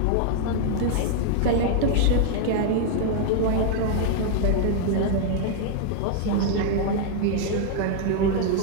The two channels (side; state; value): both; different; correlation 0.00